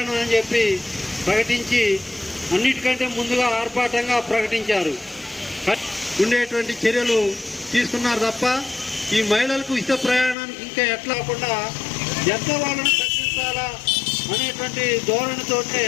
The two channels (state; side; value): drops out; right; at 10.4 s